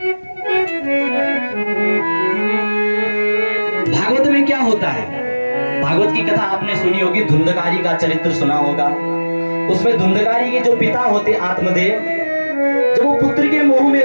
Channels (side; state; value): both; inverted; correlation -1.00